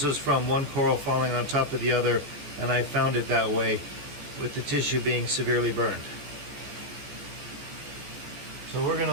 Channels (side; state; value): left; late; 14 ms